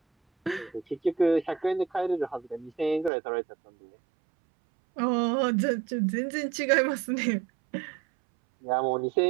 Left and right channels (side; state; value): left; drops out; at 3.1 s